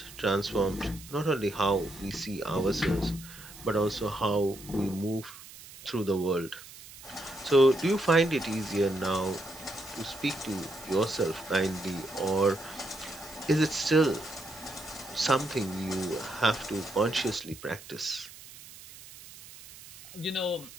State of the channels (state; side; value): noise; right; hiss, 17 dB below the sound